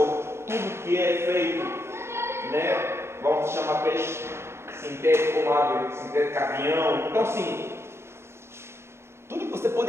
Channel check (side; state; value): left; late; 0.12 ms